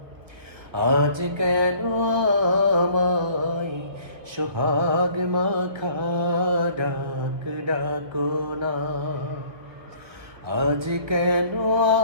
আজ কেন আমায় সোহাগ মাখা ডাক ডাকো না। আজ কেন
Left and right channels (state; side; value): late; left; 1.4 ms